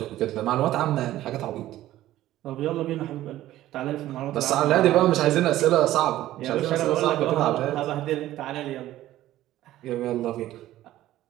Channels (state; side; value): quieter; left; 14.4 dB